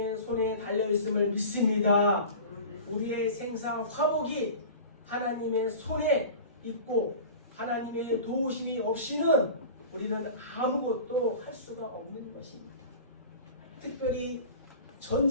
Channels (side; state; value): both; inverted; correlation -0.37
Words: 손에 달려있음을 믿습니다. 우리의 생사 화복이 하나님의 손에 있고 하나님의 도우심이 없이는 우리는 아무것도 할 수가 없는 것입니다. 특별히